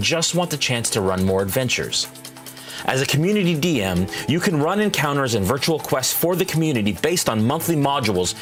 just want the chance to run more adventures. As a community DM, you can run encounters and virtual quests for the community based on monthly modules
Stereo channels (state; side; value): identical; both; correlation 1.00